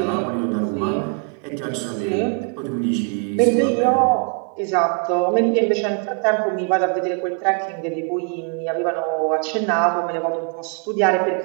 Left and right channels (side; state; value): left; quieter; 37.9 dB